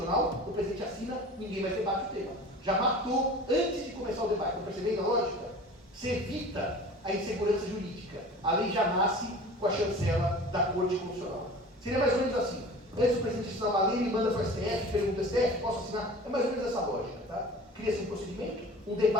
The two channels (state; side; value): normal; both; correlation 0.40